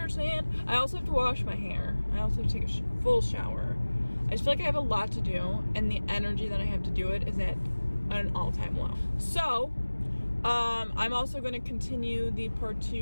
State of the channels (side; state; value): both; inverted; correlation -1.00